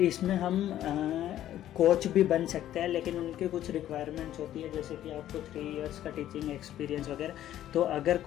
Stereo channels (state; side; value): quieter; right; 12.4 dB